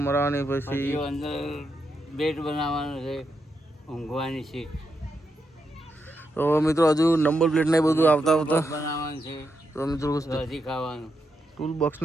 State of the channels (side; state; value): both; normal; correlation 0.83